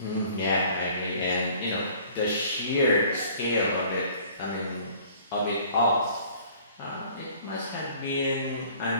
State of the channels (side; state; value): both; inverted; correlation -0.52